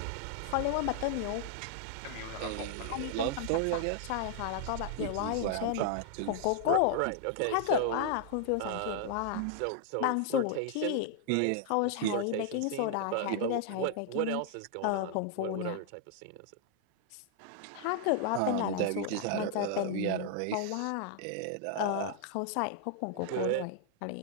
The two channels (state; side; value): different; both; correlation 0.00